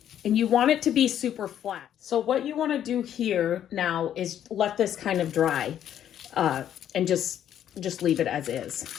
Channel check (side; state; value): right; quieter; 10.4 dB